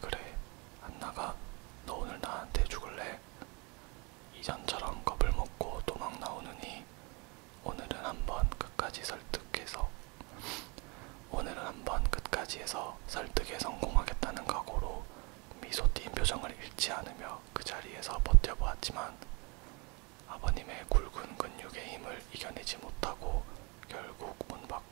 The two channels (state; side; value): quieter; left; 29.6 dB